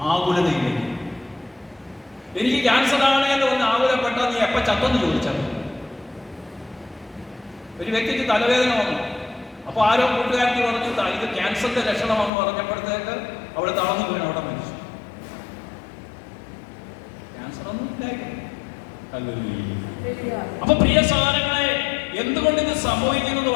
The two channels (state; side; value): drops out; right; at 12.3 s